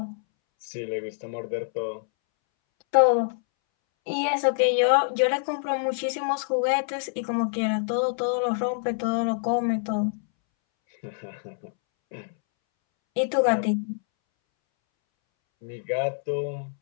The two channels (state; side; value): silent; right; 61 dB below the other